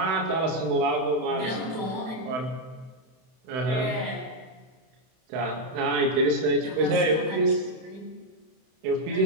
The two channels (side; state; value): left; late; 31 ms